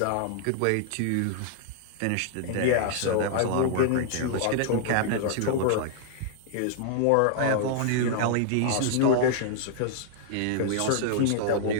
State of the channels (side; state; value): both; different; correlation -0.01